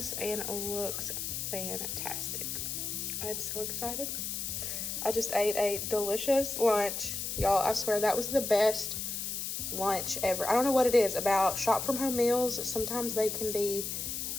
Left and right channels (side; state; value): left; noise; hiss, 3 dB below the sound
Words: and looks fantastic. I'm so excited. I just ate a delicious lunch. Y'all, I swear that was the best lunch ever. I don't know what it is about shop from home meals. Sometimes they can be